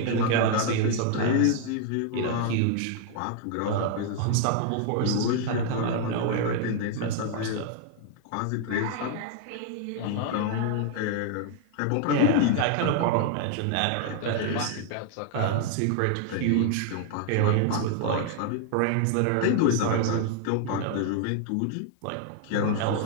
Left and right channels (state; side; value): different; both; correlation 0.00